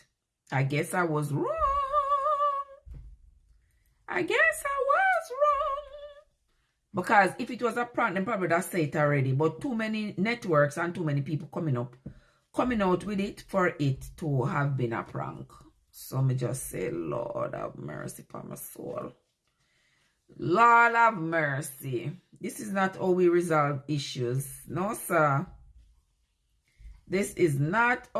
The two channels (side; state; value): both; identical; correlation 1.00